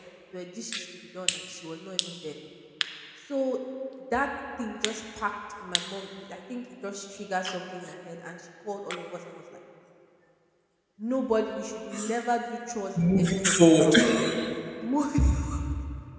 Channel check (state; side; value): identical; both; correlation 1.00